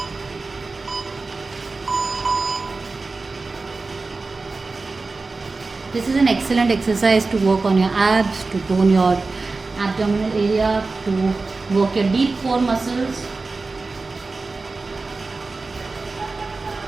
This is an excellent exercise to work on your abs, to tone your abdominal area, to work your deep core muscles.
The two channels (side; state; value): left; quieter; 3.8 dB